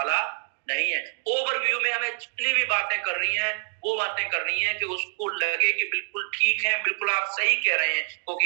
नहीं है। ओवरव्यू में हमें जितनी भी बातें कर रही हैं वो बातें करनी है कि उसको लगे कि बिल्कुल ठीक है, बिल्कुल आप सही कह रहे हैं,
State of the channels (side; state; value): left; silent; 61 dB below the other